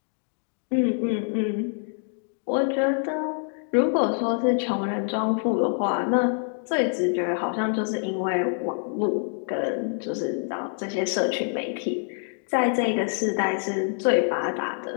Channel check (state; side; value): silent; right; 61 dB below the other